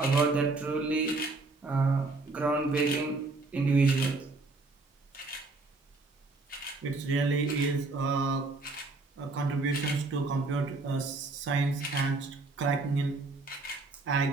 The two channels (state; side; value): quieter; left; 3.4 dB